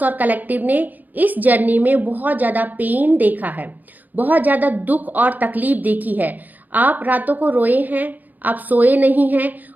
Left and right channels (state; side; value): late; left; 0.083 ms